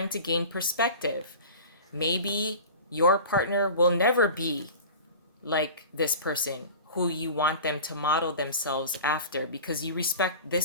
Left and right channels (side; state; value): both; inverted; correlation -0.36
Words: to gain perspective. Maybe your partner will never be like this person who you want them to model themselves after, because you respect